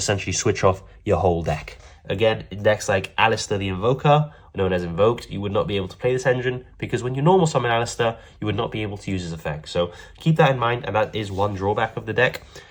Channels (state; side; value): identical; both; correlation 1.00